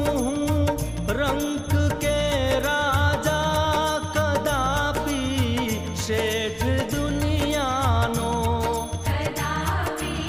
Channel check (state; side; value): identical; both; correlation 1.00